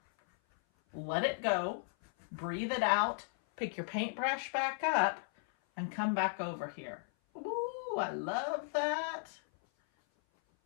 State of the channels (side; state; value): right; silent; 54 dB below the other